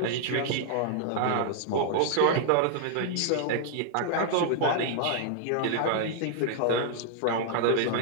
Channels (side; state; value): both; different; correlation -0.01